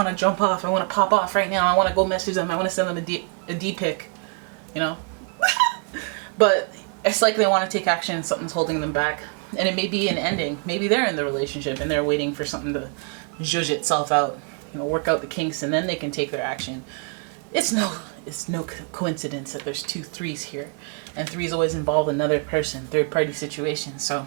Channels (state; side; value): quieter; left; 37.4 dB